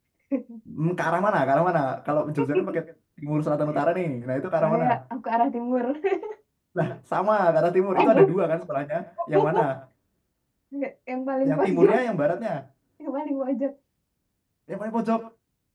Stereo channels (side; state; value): both; identical; correlation 1.00